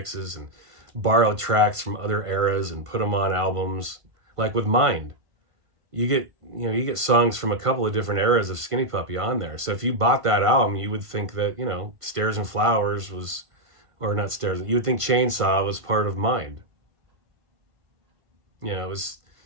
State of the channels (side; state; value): left; late; 1.5 ms